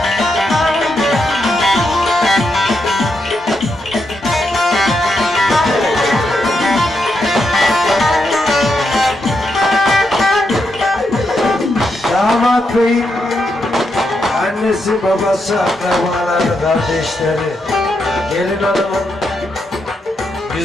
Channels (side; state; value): both; normal; correlation 0.82